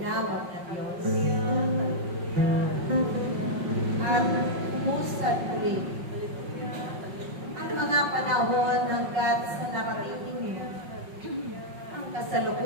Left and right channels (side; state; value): left; late; 5.4 ms